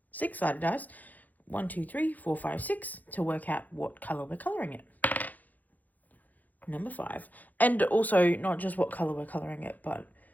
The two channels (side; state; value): right; late; 0.081 ms